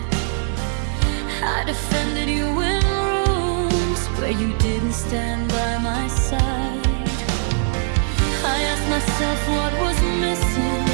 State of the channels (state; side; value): silent; left; 65 dB below the other